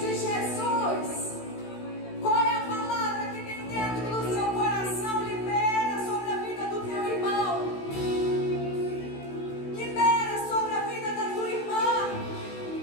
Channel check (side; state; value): right; late; 16 ms